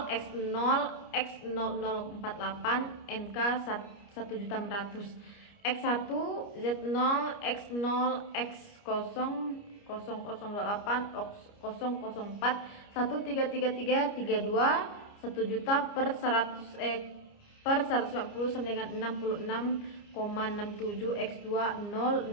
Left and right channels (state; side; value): late; right; 29 ms